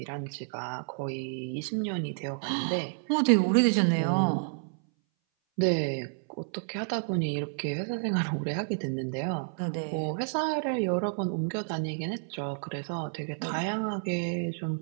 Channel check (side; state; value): left; silent; 58 dB below the other